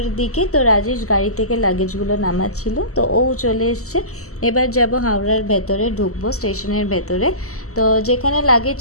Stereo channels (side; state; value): right; late; 0.64 ms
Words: দিকে। তো রাজেশ গাড়ি থেকে লাগেজগুলো নামাচ্ছিল, তো ও চলে এসছে। এবার যাব হাওড়ার ভেতরে, ঢুকবো স্টেশনের ভেতরে। তো যেখানে লাগেজ